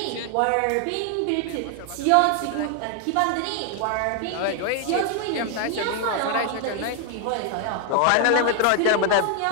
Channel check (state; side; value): different; both; correlation 0.00